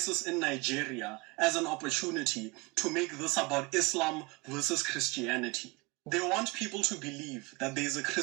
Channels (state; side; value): quieter; left; 25.9 dB